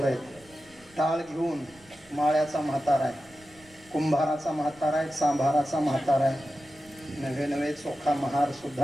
आहे टाळ घेऊन माळ्याचा म्हातारा आहे कुंभाराचा म्हातारा आहे, सांभाराचा म्हातारा आहे, नवे नवे चोखा महार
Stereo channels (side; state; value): right; noise; rumble, 27 dB below the sound